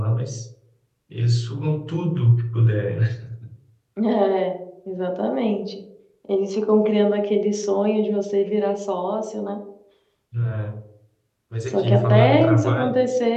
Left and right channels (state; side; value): identical; both; correlation 1.00